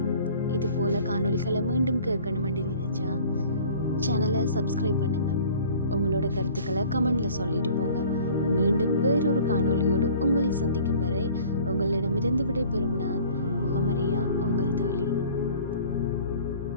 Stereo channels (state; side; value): inverted; both; correlation -0.48